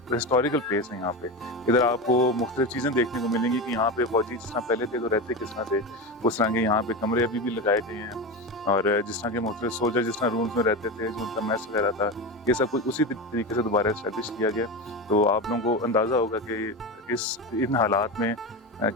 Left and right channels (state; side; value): normal; both; correlation 0.21